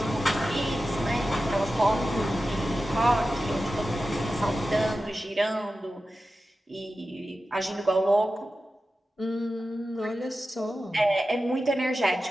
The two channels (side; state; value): both; normal; correlation 0.93